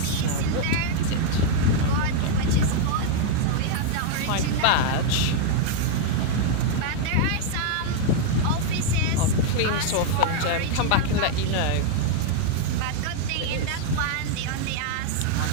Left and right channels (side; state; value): both; different; correlation 0.00